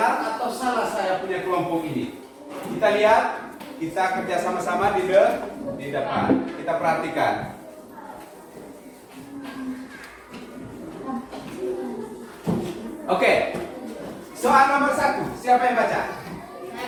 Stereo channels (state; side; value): identical; both; correlation 1.00